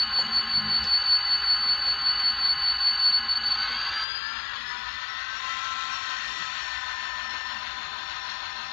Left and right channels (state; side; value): drops out; right; at 4.0 s